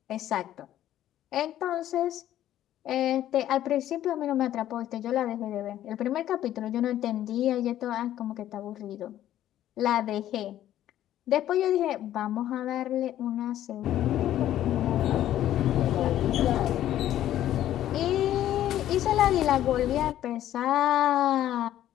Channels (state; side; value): quieter; right; 12.4 dB